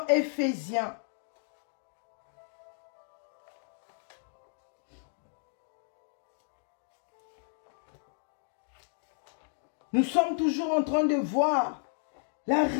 Éphésiens. Nous sommes toujours en train de voir la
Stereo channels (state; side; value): silent; right; digital silence